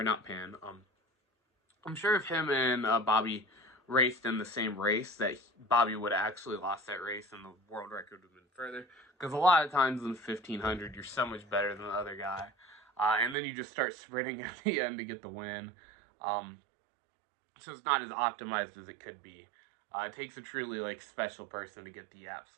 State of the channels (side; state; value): left; drops out; at 13.4 s